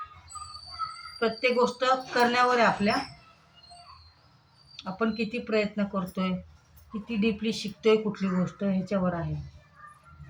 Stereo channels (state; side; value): identical; both; correlation 1.00